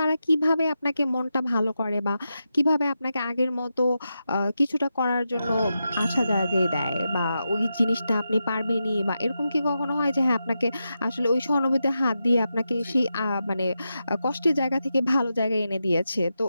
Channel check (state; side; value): inverted; both; correlation -0.88